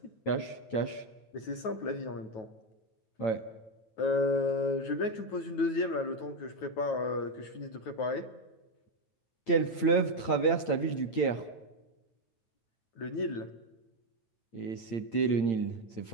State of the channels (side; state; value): right; late; 8.9 ms